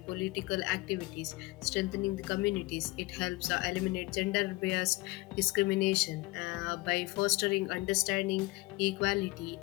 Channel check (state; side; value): quieter; right; 22.8 dB